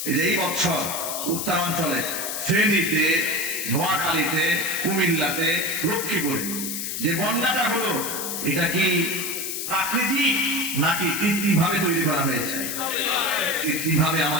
এই বছর উত্তরাঞ্চলে ফেনীতে, নোয়াখালীতে, কুমিল্লাতে, লক্ষ্মীপুরে যে বন্যাটা হলো, এটা কি প্রাকৃতিক নাকি কৃত্রিম ভাবে তৈরি করা হয়েছে? কৃত্রিম ভাবে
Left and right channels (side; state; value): left; noise; hiss, 4 dB below the sound